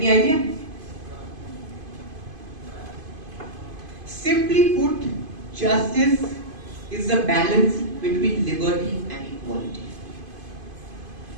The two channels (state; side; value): late; left; 2.5 ms